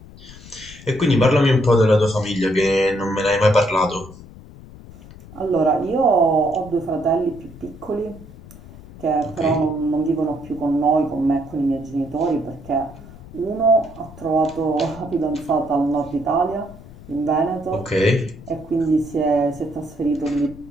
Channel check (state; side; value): noise; left; rumble, 18 dB below the sound